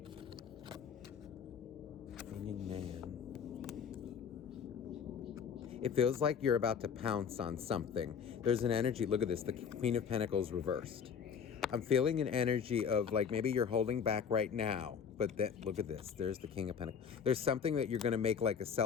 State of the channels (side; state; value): right; quieter; 7.0 dB